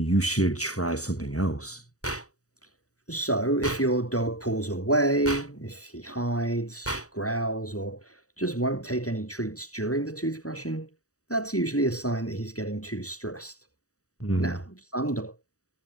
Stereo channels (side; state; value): right; late; 0.66 ms